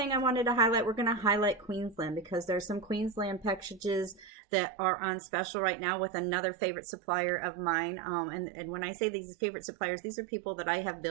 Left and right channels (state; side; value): drops out; left; at 4.3 s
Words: I wanted to highlight, we're going to highlight Queensland because there's some Queensland packages that are on special right now with another favorite supplier of mine. And when I say these favorite suppliers, these are people that I have